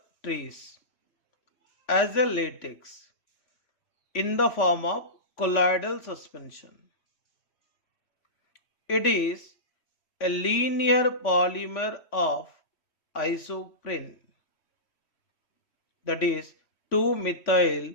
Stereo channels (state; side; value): late; right; 3.5 ms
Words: trees as a latex in the form of colloidal suspension. It is a linear polymer of isoprene, that is 2-methyl